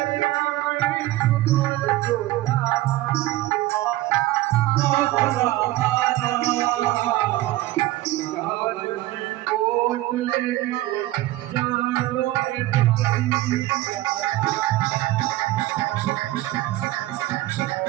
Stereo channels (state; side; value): quieter; left; 16.7 dB